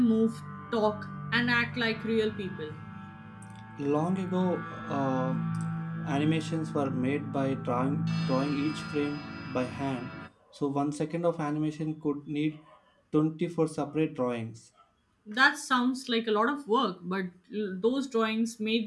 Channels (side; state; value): both; identical; correlation 1.00